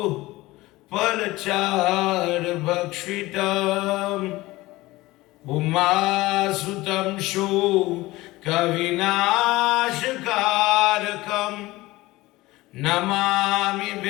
Palachar Bhakshitam Umasutam Shu Kavinashkarakam Namami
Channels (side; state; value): right; quieter; 19.3 dB